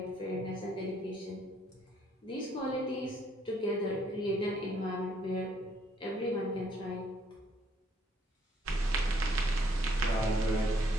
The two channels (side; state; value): both; normal; correlation 0.67